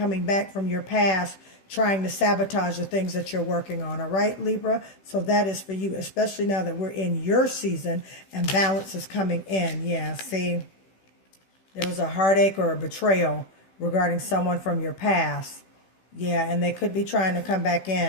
back from your past trying to sabotage the things that you're working on. All right, Libra. So that is for you, especially now that we're in your season and balance is coming in. Yeah. See, there was a heartache or a betrayal regarding someone from your past. Yeah. And they could be trying to come back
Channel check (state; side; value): late; right; 16 ms